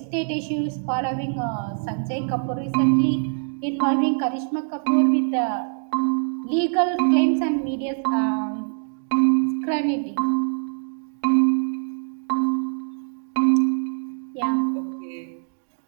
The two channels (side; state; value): left; silent; digital silence